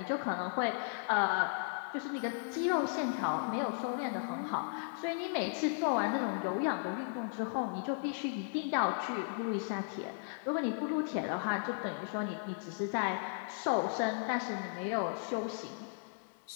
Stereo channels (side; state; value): right; silent; digital silence